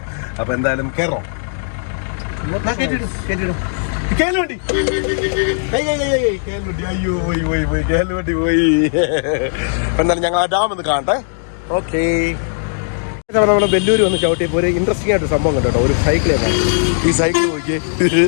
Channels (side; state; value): right; silent; digital silence